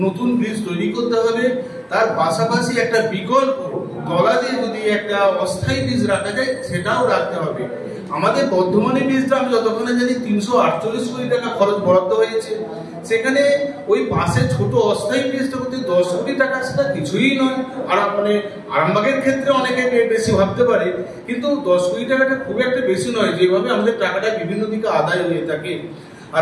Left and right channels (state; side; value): identical; both; correlation 1.00